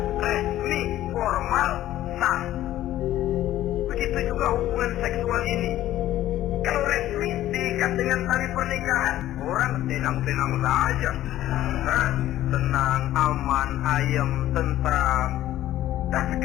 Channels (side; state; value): right; quieter; 13.7 dB